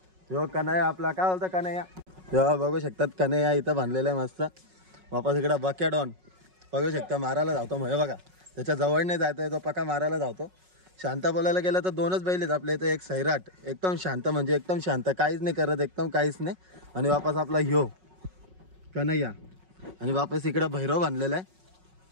हो कन्हैया आपला काय बोलतो कन्हैया, तेव्हा बघू शकतात कन्हैया इथं बांधलेलं आहे मस्त. वापस इकडं बकॅडॉन बघू शकता मारायला धावतो. म्हणजे बघा त्याच्या जवळ नाही जायचं, तो पका मारायला धावतो. शांत बोलायला गेलं तर दोनच बैल आहेत आपल्या इथं. एक सैराट एकदम शांत, म्हणजे एकदम शांत, काहीच नाही करत, एकदम काहीच नाही. आणि वापस आपला ह्यो कन्हैया. आणि वापस इकडं भैरव बांधलेला आहे.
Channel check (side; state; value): left; late; 5.4 ms